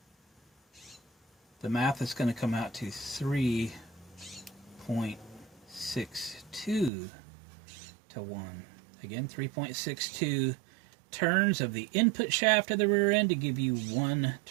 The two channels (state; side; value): drops out; left; at 6.9 s